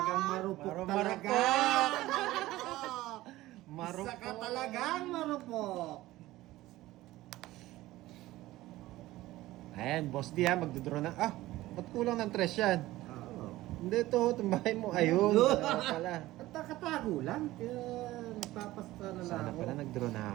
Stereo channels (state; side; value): quieter; left; 16.9 dB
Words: ah. marupok Marupok. talaga. Marupok. Isa ka talagang marupok. Ayan, Boss D ha, magdodraw na. Ba't kulang ng 3 yan? Oo. Hindi to, tumbahay mo. Ayun, wala pala. At nakatago lang. Kaya nagpapasta na lang Sana ako. pala nag-draw na